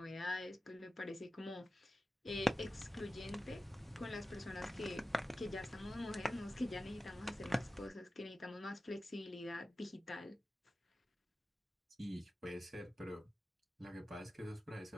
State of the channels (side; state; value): both; normal; correlation 0.94